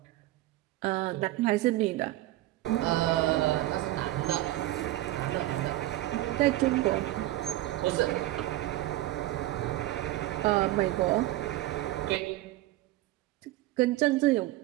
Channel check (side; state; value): left; quieter; 16.3 dB